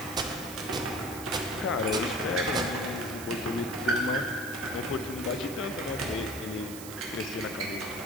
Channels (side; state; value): right; noise; hiss, 11 dB below the sound